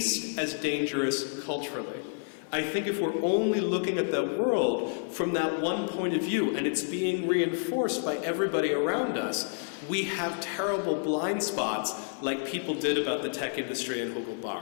as dangerous culturally. I think if we're only looking at the world from that one point of view and it's being reinforced by everybody around us, we have terrible blind spots like people did about the tech industry and Hugo Barra.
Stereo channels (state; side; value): silent; right; 58 dB below the other